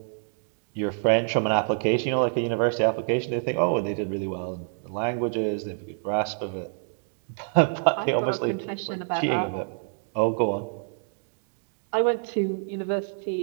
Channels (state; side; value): silent; left; digital silence